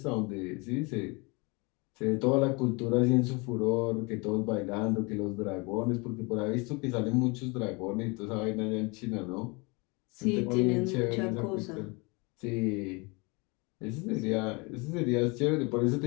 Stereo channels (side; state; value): right; quieter; 28.3 dB